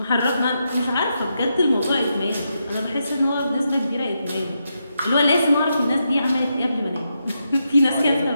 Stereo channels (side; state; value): both; inverted; correlation -0.84